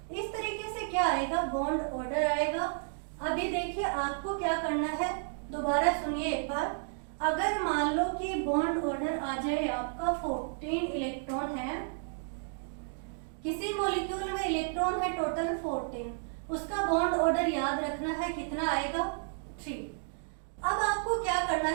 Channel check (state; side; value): silent; left; digital silence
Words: इस तरीके से क्या आएगा, बॉन्ड ऑर्डर आएगा। अभी देखिए आपको क्या करना है, दोबारा सुनिए एक बार। अगर मान लो कि बॉन्ड ऑर्डर आ जाए आपका 14 इलेक्ट्रॉन है, किसी मॉलिक्यूल में इलेक्ट्रॉन है टोटल 14, उसका बॉन्ड ऑर्डर याद रखना है कितना आएगा 3। अब आपको क्या करना